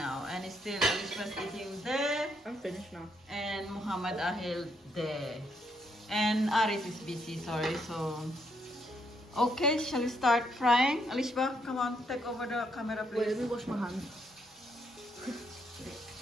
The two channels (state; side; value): normal; both; correlation 0.75